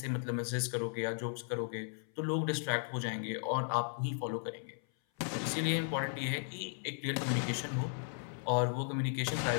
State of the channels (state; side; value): silent; right; 54 dB below the other